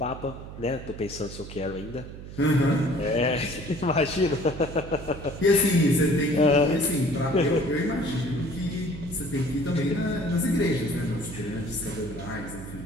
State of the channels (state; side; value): noise; right; hum, 12 dB below the sound